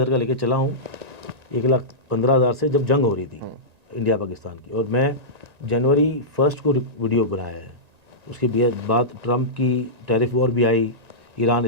का लेके चला हूँ 1,15,000 से, जब जंग हो रही थी इंडिया पाकिस्तान की, और मैं जनवरी 1 को वीडियो बनाया है। उसके बाद ट्रंप की टैरिफ वॉर भी आई, ईरान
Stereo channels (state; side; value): late; left; 1.9 ms